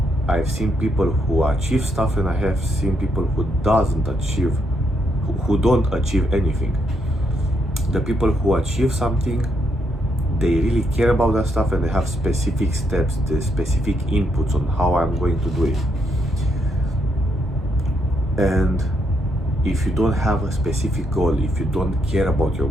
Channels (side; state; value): both; normal; correlation 0.76